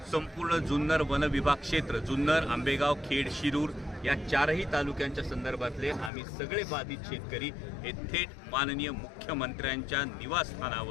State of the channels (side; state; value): right; drops out; at 6.1 s